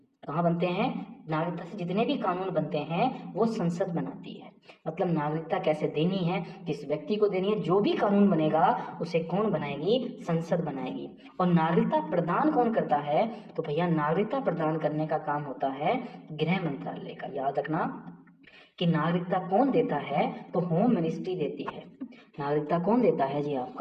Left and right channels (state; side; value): identical; both; correlation 1.00